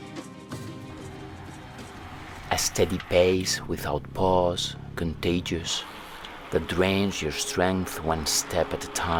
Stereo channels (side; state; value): both; identical; correlation 1.00